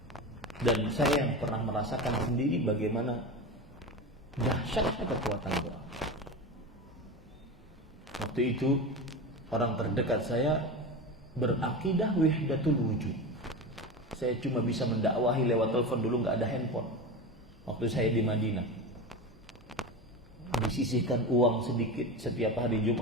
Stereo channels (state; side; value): normal; both; correlation 0.25